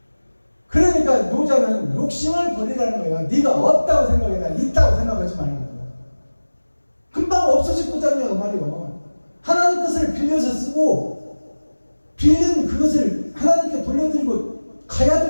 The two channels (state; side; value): inverted; both; correlation -1.00